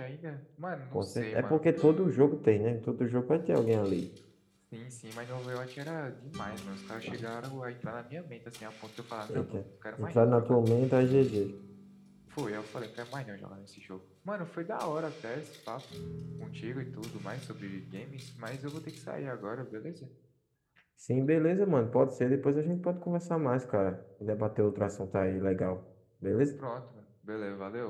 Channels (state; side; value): identical; both; correlation 1.00